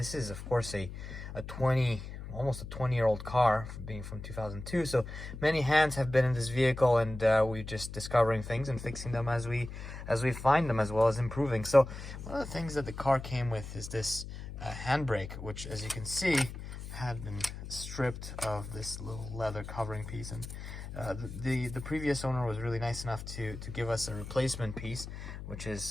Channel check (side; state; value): left; noise; hum, 10 dB below the sound